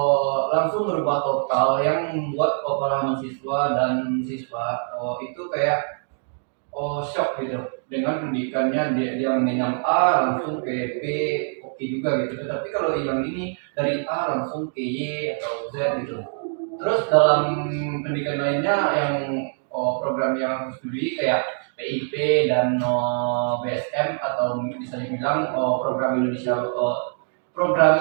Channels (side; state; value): left; silent; 63 dB below the other